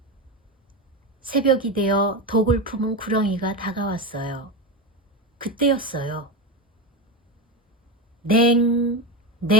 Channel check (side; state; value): both; normal; correlation 0.17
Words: 새벽이 되어 독을 품은 구렁이가 다가왔어요. 그때였어요. 냉,